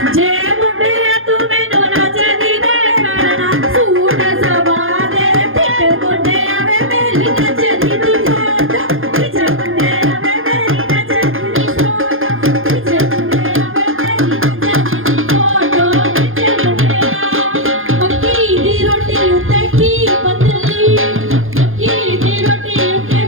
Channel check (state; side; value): late; left; 0.60 ms